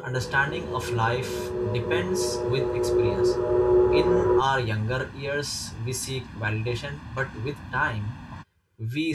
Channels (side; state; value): both; identical; correlation 1.00